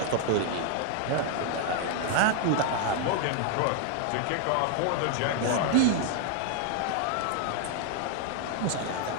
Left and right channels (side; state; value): both; different; correlation 0.00